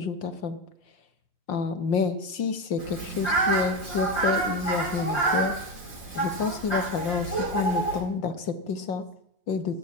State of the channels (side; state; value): right; late; 5.7 ms